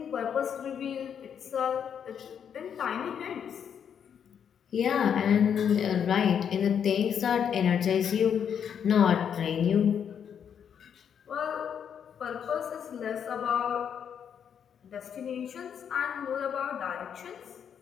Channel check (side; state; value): right; quieter; 8.0 dB